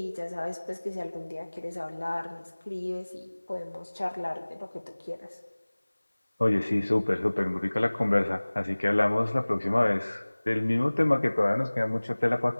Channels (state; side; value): inverted; both; correlation -1.00